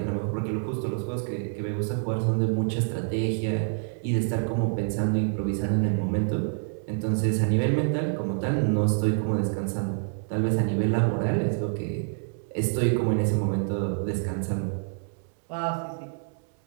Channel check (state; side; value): silent; left; 60 dB below the other